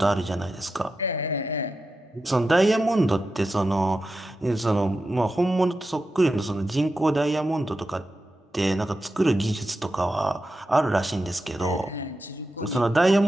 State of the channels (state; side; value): normal; both; correlation 0.90